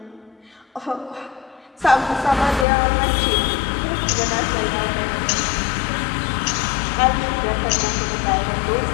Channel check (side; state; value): right; drops out; at 2.7 s